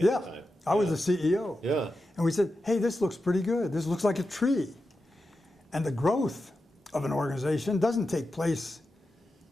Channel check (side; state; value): both; normal; correlation 0.90